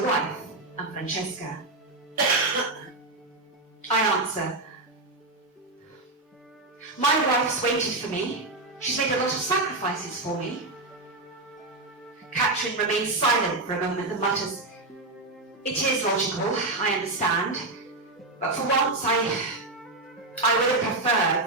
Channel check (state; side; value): quieter; left; 3.0 dB